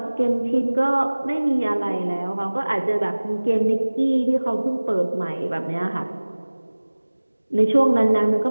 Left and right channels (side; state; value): both; inverted; correlation -1.00